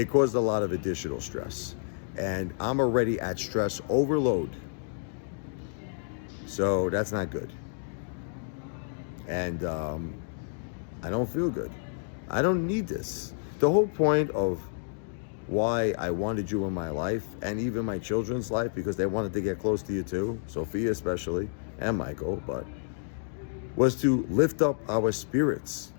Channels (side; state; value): right; silent; digital silence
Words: caused a lot of additional stress. And I'm already at stress overload. So that's not good. And I don't feel good. I don't need this. The whole point of why I wanted you in my life, and even my children's life, because they wanted to get close to you too, Sophia especially, and Michael, but was to lift up our spirits,